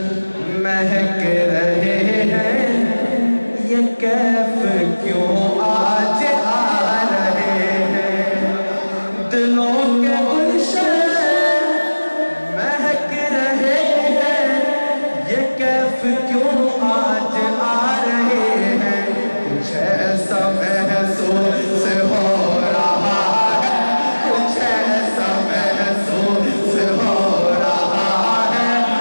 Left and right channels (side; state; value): both; inverted; correlation -1.00